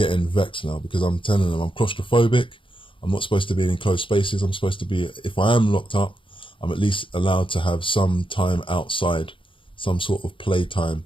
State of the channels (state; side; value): late; right; 0.25 ms